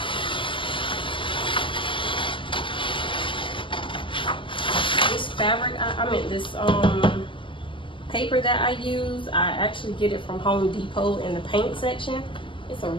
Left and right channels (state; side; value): late; right; 0.25 ms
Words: fabric, I meant this paper that I use, I actually get it from Home Depot in the paint section. It's a